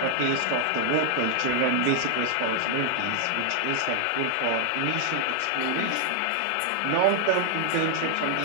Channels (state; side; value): different; both; correlation 0.00